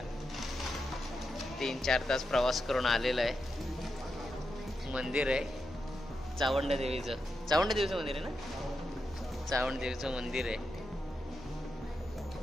3-4 तास प्रवास करून आलेला आहे. मंदिर आहे चावंड देवीचं मंदिर आहे ना, चावंड देवीचं मंदिर आहे.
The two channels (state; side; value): normal; both; correlation 0.86